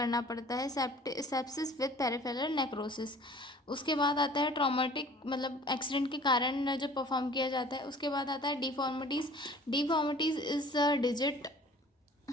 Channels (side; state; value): both; normal; correlation 0.49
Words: पड़ता है, सेप्सिस विद पेरिफेरल नेक्रोसिस। उसके बाद आता है ट्रॉमेटिक, मतलब एक्सीडेंट के कारण जो परफॉर्म किया जाता है। उसके बाद आता है deformities. Deformities is digit